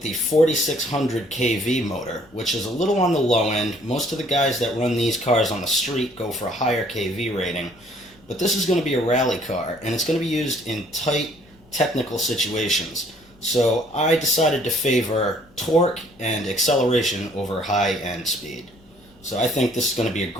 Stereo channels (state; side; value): noise; left; rumble, 28 dB below the sound